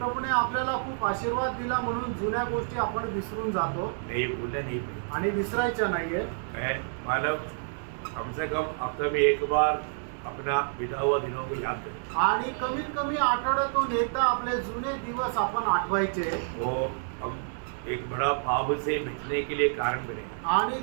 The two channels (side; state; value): left; silent; digital silence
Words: आपल्याला खूप आशीर्वाद दिला म्हणून जुन्या गोष्टी आपण विसरून जातो। नहीं भूलना नहीं आणि विसरायचं नाहीये। मानव कम से कम हफ्ते में एक बार अपना बीता हुआ दिनों को याद करें आणि कमीत कमी आठवड्यातून एकदा आपले जुने दिवस आपण आठवायचे। वो हम एक बड़ा पाप से बचने के लिए कारण बने आणि